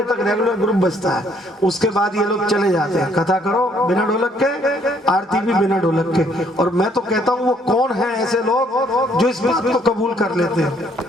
तक रेगुलर ग्रुप बजता है। उसके बाद ये लोग चले जाते हैं। कथा करो बिना ढोलक के, आरती भी बिना ढोलक के। और मैं तो कहता हूँ वो कौन है ऐसे लोग जो इस बात को कबूल कर लेते हैं,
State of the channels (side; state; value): both; normal; correlation 0.65